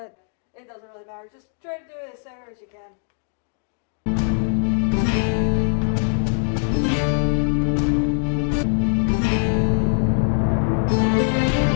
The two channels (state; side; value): silent; right; 62 dB below the other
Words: it doesn't really matter. Just try to do it as center as you can.